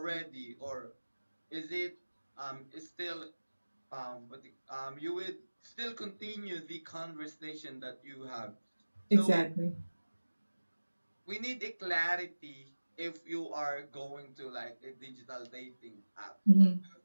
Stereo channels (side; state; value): both; inverted; correlation -1.00